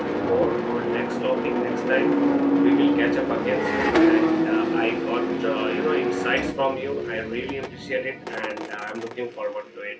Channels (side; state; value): both; identical; correlation 1.00